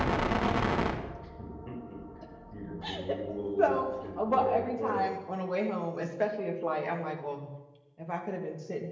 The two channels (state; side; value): identical; both; correlation 1.00